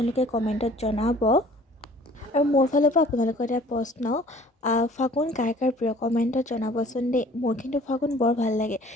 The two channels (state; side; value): normal; both; correlation 0.52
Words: কমেণ্টত জনাব। আৰু মোৰ ফালৰ পৰা আপোনালোকৰ এটা প্ৰশ্ন, ফাগুন কাৰ কাৰ প্ৰিয় কমেণ্টত জনাবচোন দেই। মোৰ কিন্তু ফাগুন বৰ ভাল লাগে।